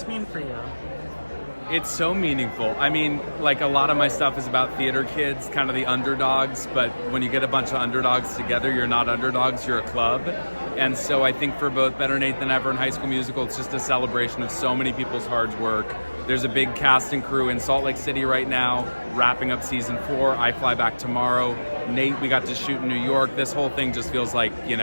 mean for you? It's so meaningful. I mean, like, a lot of my stuff is about theater kids, kind of the underdogs, but when you get a bunch of underdogs together, you're not underdogs, you're a club. And so I think for both Better Nate Than Ever and High School Musical, it's just a celebration of so many people's hard work. There's a big cast and crew in Salt Lake City right now, wrapping up season 4. I fly back tomorrow. Nate, we got to shoot in New York. This whole thing just feels like,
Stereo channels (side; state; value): both; inverted; correlation -1.00